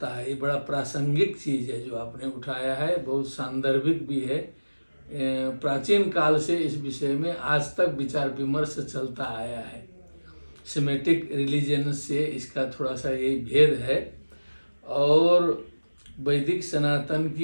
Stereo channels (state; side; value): inverted; both; correlation -1.00